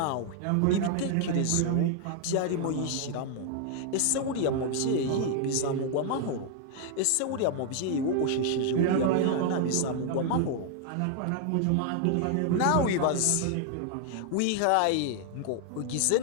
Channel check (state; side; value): different; both; correlation 0.00